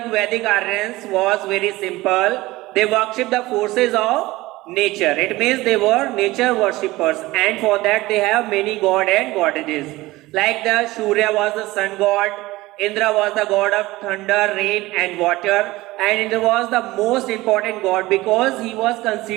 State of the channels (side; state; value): left; quieter; 19.1 dB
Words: Vedic Aryans was very simple. They worshipped the forces of nature. It means they were nature worshippers, and for that they have many god and goddesses. Like the Surya was the sun god, Indra was the god of thunder, rain and water, and Indra was the most important god because he was